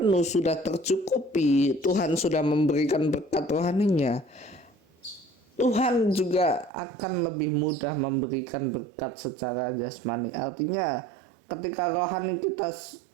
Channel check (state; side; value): drops out; left; at 6.7 s